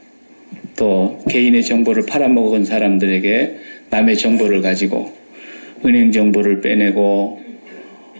또 개인의 정보를 팔아먹은 사람들에게 남의 정보를 가지고 은행 정보를 빼내고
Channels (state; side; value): inverted; both; correlation -1.00